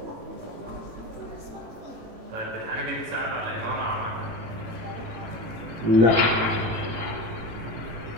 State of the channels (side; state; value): left; late; 18 ms